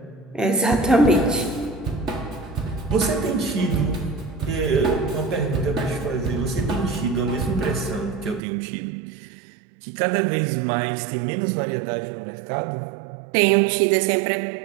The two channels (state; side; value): drops out; left; at 8.4 s